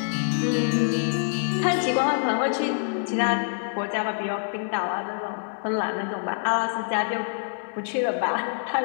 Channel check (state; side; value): silent; right; digital silence